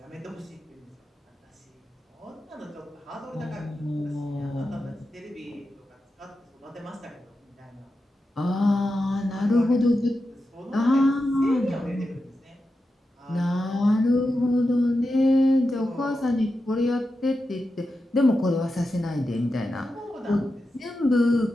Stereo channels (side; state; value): both; normal; correlation 0.90